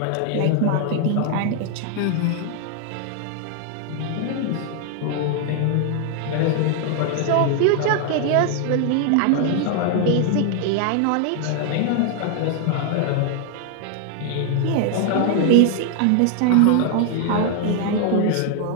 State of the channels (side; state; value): both; different; correlation 0.00